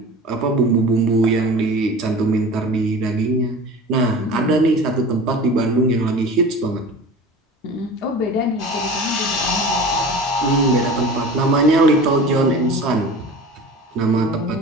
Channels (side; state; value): both; normal; correlation 0.37